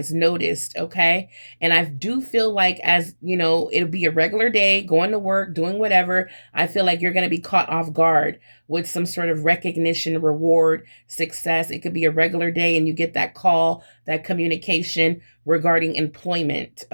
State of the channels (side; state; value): both; inverted; correlation -1.00